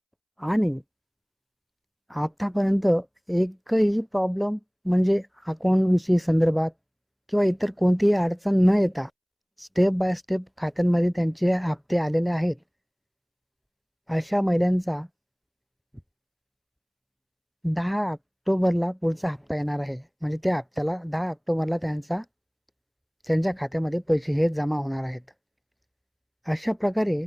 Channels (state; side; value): identical; both; correlation 1.00